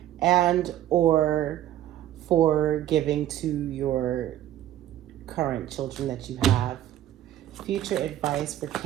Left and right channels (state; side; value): quieter; left; 12.6 dB